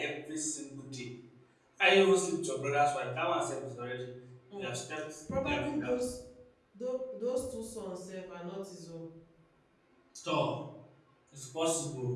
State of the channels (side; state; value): both; identical; correlation 1.00